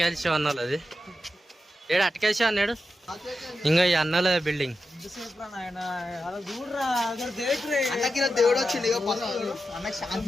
అన్నాడు, అది ఏడు అటకాల్సి అన్నాడు. ఇంకా ఈ అన్నల బిల్డింగ్ దేవుడు వచ్చింది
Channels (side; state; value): both; normal; correlation 0.89